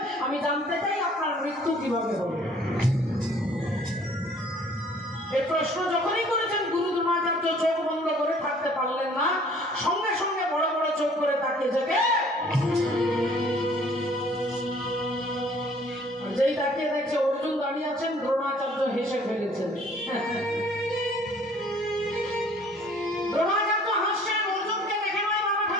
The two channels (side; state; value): both; normal; correlation 0.55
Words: আমি জানতে চাই আপনার মৃত্যু কিভাবে হবে। এই প্রশ্ন যখনই করেছেন গুরু দ্রোণাচার্য চোখ বন্ধ করে থাকতে পারলেন না, সঙ্গে সঙ্গে বড় বড় চোখ করে তাকিয়ে থেকে যেই তাকিয়ে দেখছে অর্জুন দাঁড়িয়ে আছেন, দ্রোণাচার্য হেসে ফেলেছেন। দ্রোণাচার্য হাসছেন, অর্জুনকে দেখে নয় বাবা